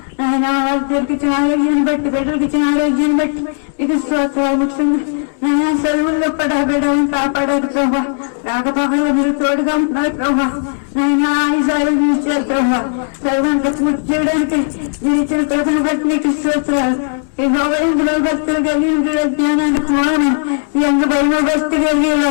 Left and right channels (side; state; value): right; silent; digital silence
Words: ఆరోగ్యానికి ఇచ్చిన ఆరోగ్యాన్ని బట్టి బిడ్డలకు ఇచ్చిన ఆరోగ్యాన్ని బట్టి ఇది ముఖ్యంగా నేను సెలవుల్లో కూడా బిడ్డలను కాపాడారు ప్రభా. రాకపోకల్లో మీరు తోడుగా ఉన్నారు ప్రభా. నేను ఆయుధాలు ఇచ్చారు ప్రభా. సర్వాన్ని చేయడానికి మీరు ఇచ్చిన కృపను బట్టి మీకు ఇస్తున్నారు. ఇందులో భక్తులు కలిగి జ్ఞానాన్ని మీ అందు భక్తి కలిగి